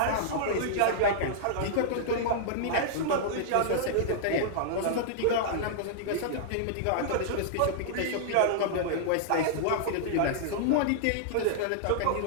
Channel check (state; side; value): different; both; correlation -0.01